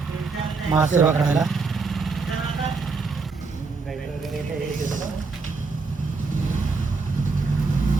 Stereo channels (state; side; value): quieter; left; 4.4 dB